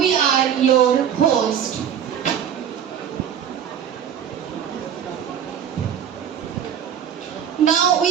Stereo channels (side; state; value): left; quieter; 8.9 dB